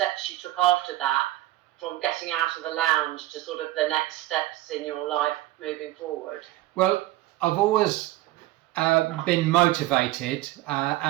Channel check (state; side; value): quieter; left; 16.2 dB